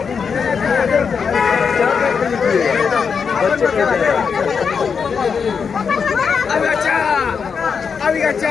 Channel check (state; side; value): quieter; right; 6.1 dB